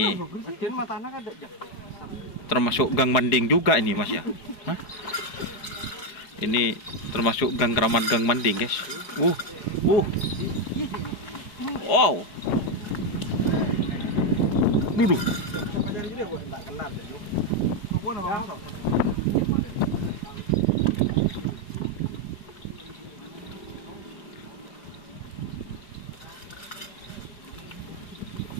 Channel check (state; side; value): late; right; 4.8 ms